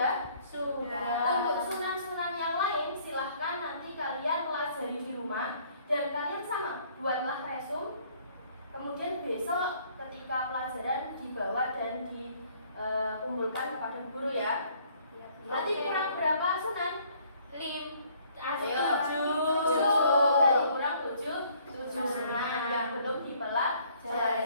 Untuk sunan-sunan yang lain silahkan nanti kalian pelajari di rumah dan kalian sama buatlah resum. Kemudian besok ketika pelajaran dibawa dan dikumpulkan kepada guru ya. Berarti kurang berapa sunan? 7. Dari kurang 7 sunan yang belum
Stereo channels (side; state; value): both; inverted; correlation -0.61